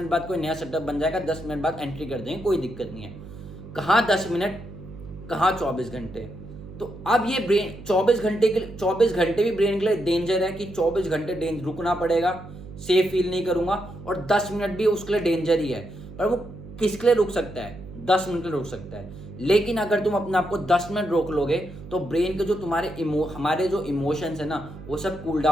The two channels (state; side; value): noise; right; hum, 15 dB below the sound